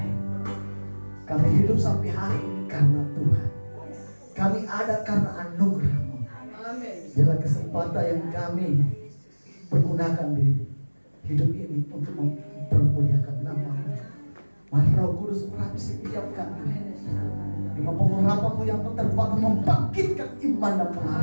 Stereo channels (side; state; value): both; inverted; correlation -1.00